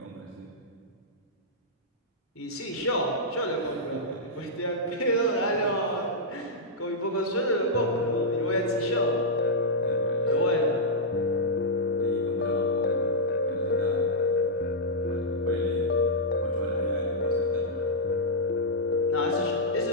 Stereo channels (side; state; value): both; normal; correlation -0.09